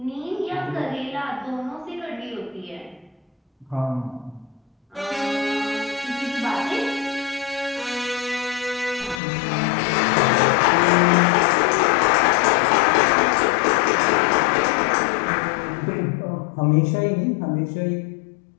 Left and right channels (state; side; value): drops out; right; at 9.2 s